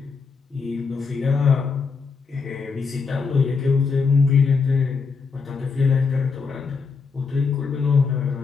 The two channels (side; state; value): right; quieter; 5.0 dB